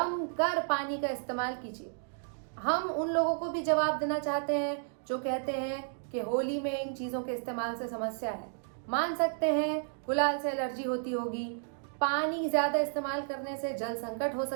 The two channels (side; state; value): left; silent; digital silence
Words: पानी का इस्तेमाल कीजिए। हम उन लोगों को भी जवाब देना चाहते हैं जो कहते हैं कि होली में इन चीज़ों के इस्तेमाल से समस्या है। मान सकते हैं गुलाल से एलर्जी होती होगी, पानी ज़्यादा इस्तेमाल करने से जल संकट हो